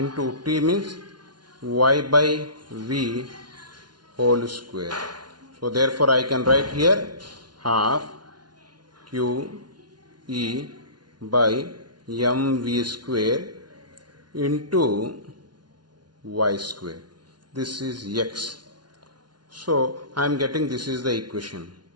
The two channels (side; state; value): left; late; 0.70 ms